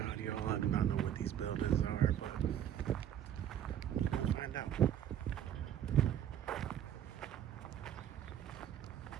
y'all, I do not know what these buildings are, but we'll find out.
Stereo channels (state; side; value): quieter; left; 10.2 dB